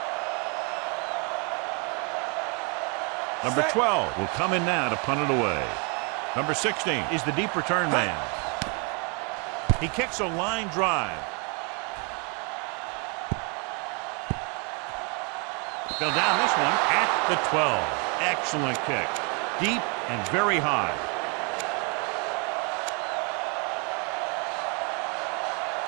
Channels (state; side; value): quieter; left; 34.3 dB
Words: Number 12 will come in now to punt it away. Number 16 is the deep return man. He kicks a line drive. Fell down this one at the 12. Excellent kick. Deep and very high.